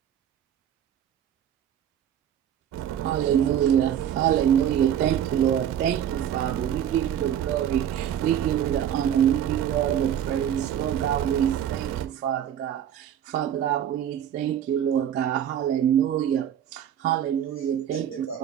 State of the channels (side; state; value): left; quieter; 10.0 dB